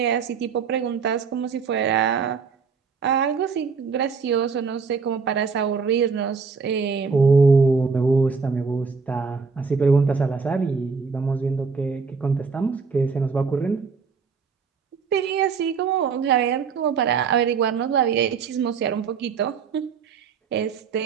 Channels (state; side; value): quieter; left; 5.4 dB